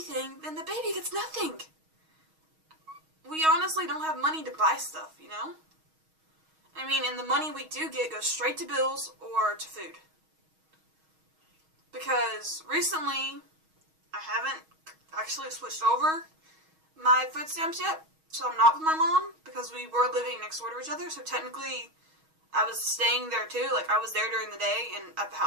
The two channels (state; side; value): late; left; 6.3 ms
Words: then the baby gets nothing. We honestly don't have money to buy stuff, you know? I mean, and the money we do get goes straight to bills or to food. Because recently, I haven't actually switched over my food stamps yet. So I'm not with my mom, because we were living next door to each other, so technically I was staying there too. Like, I was there during the day and at the